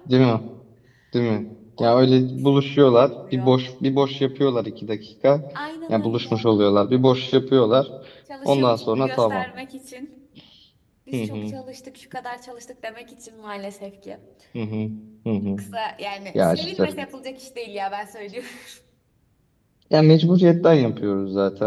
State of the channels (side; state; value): both; identical; correlation 1.00